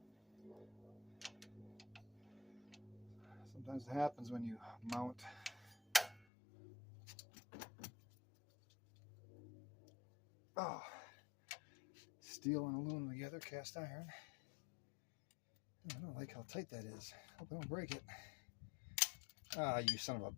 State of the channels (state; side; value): drops out; right; at 6.2 s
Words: Sometimes it happens when you mount steel and aluminum together, cast iron. I don't like how tight that is. Hope I don't break it. Ah, you son of a